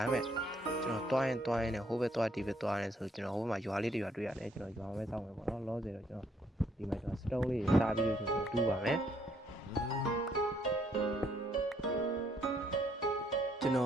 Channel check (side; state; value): both; normal; correlation 0.69